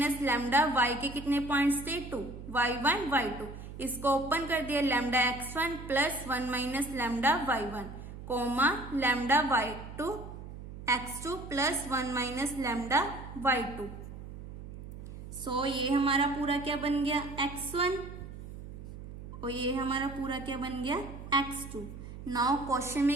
lambda y के कितने points थे? 2, y1, y2. इसको ओपन कर दिया lambda x1 plus 1 minus lambda y1 comma lambda y2 x2 plus 1 minus lambda y2. So ये हमारा पूरा क्या बन गया? x1 और ये हमारा पूरा क्या बन गया? x2. नाउ क्वेश्चन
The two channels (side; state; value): right; noise; hum, 12 dB below the sound